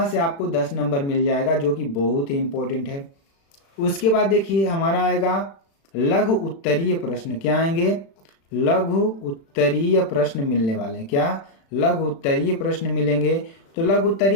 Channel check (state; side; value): late; right; 36 ms